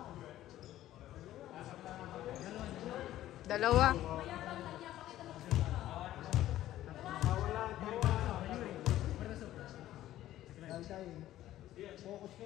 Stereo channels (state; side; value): quieter; right; 13.7 dB